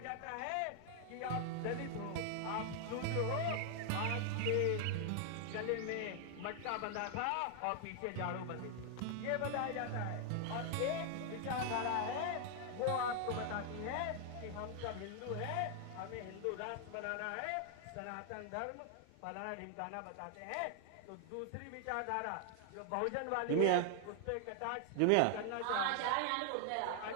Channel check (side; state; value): both; different; correlation 0.00